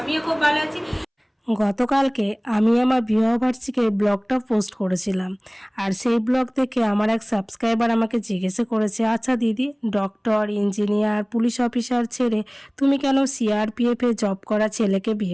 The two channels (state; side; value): identical; both; correlation 1.00